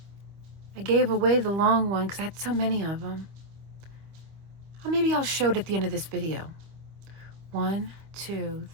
I gave away the long one because I had so many of them. Oh, maybe I'll show it at the end of this video. 1, 2,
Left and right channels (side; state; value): left; late; 25 ms